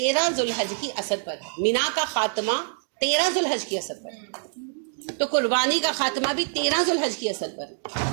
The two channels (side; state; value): left; silent; digital silence